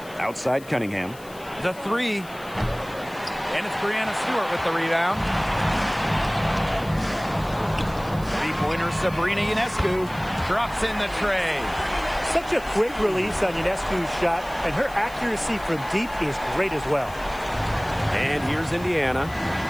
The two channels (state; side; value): noise; left; hiss, 21 dB below the sound